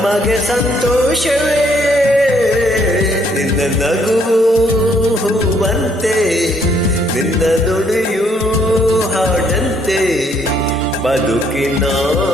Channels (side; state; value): both; normal; correlation 0.68